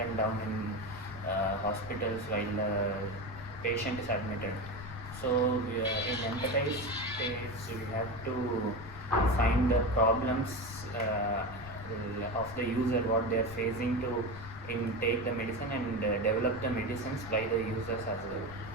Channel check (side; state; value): left; noise; rumble, 14 dB below the sound